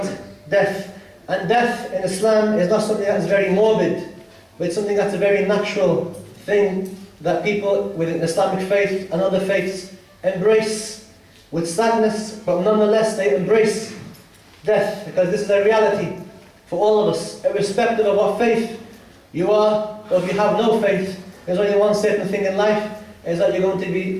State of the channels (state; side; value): identical; both; correlation 1.00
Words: death. And death in Islam is not something that is very morbid, but it's something that's a very natural thing that people within Islamic faith and other faiths embrace with sadness, but nonetheless they embrace death, because this is a reality for all of us, irrespective of what faith you are, or if you have no faith. There's only one certain thing in life, is that you're going to